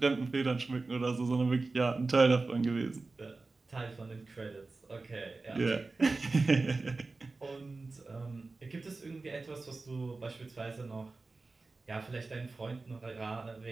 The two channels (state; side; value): quieter; left; 3.6 dB